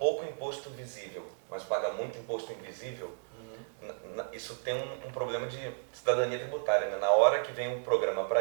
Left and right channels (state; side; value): silent; left; digital silence